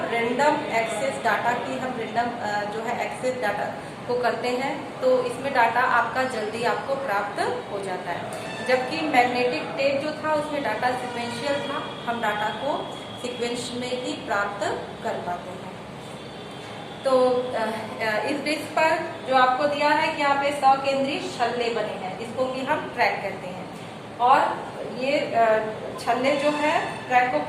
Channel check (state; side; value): identical; both; correlation 1.00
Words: रैंडम एक्सेस डाटा की हम रैंडम जो है एक्सेस डाटा को करते हैं, तो इसमें डाटा आपका जल्दी आपको प्राप्त हो जाता है। जबकि मैग्नेटिक टेप जो था उसमें डाटा सिक्वेंशियल था, हम डाटा को सीक्वेंस में ही प्राप्त कर पाते हैं। तो इस डिस्क पर जो आपको दिया है कि यहाँ पे 100 केंद्रीय छल्ले बने हैं, इसको कि हम ट्रैक कहते हैं। और ये छल्ले जो है ट्रैक को